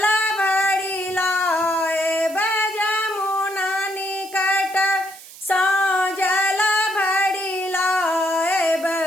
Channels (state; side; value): noise; right; hiss, 18 dB below the sound